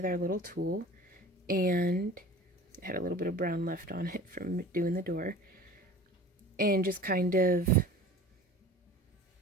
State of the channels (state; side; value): normal; both; correlation 0.42